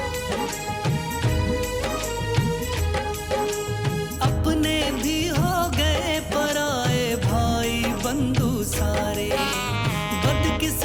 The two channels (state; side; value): identical; both; correlation 1.00